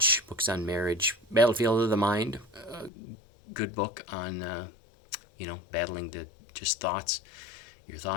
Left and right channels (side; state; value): right; drops out; at 2.9 s